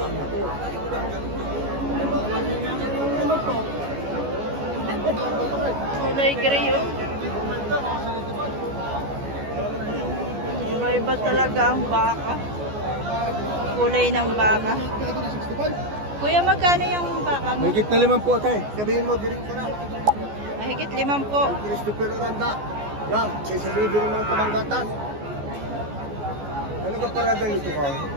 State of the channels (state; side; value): late; left; 14 ms